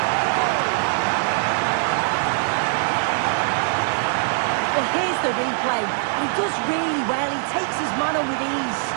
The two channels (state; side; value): silent; left; digital silence